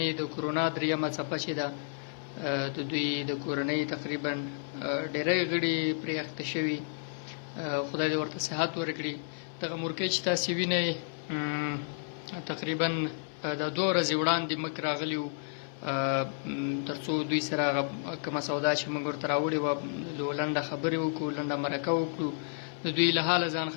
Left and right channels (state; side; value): silent; right; 57 dB below the other